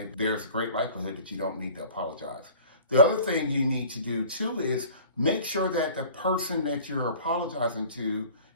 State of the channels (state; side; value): inverted; both; correlation -0.46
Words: there's a great likelihood that you don't need to apologize. The other thing you need to do too is make sure that the person that you're apologizing to